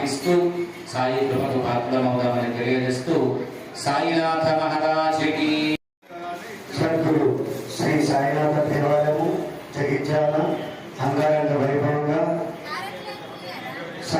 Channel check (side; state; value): both; identical; correlation 1.00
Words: సాయి కృపకు పాత్రమవుదామని తెలియజేస్తూ సాయినాథ మహారాజుకి సద్గురు శ్రీ సాయినాథ దేవాలయము జగిత్యాల అంగరంగ వైభవంగా